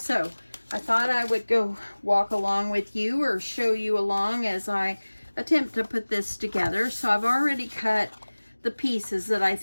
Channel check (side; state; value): both; inverted; correlation -1.00